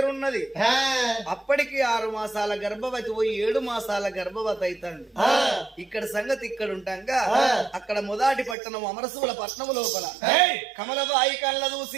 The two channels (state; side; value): drops out; left; at 8.6 s